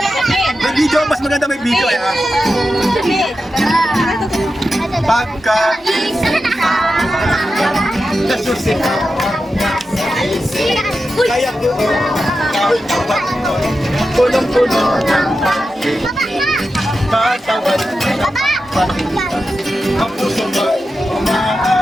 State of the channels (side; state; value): both; normal; correlation 0.90